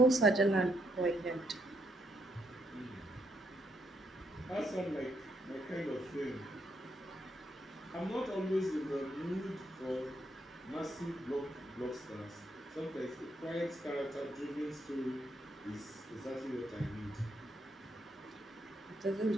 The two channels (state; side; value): normal; both; correlation 0.76